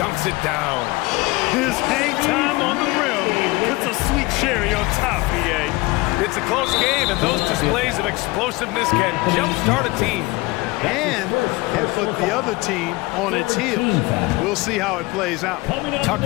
dunks it down. His hang time on the rim puts a sweet cherry on top, EA. It's a close game, and those displays of explosiveness can jumpstart a team. And can put the other team on its heels. We'll see how it plays out.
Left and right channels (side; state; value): right; quieter; 22.3 dB